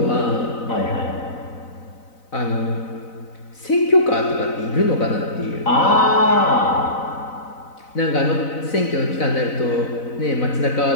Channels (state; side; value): late; right; 4.0 ms